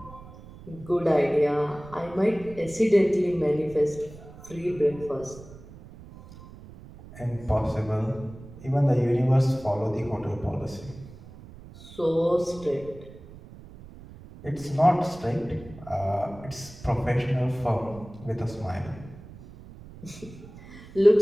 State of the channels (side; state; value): right; noise; rumble, 18 dB below the sound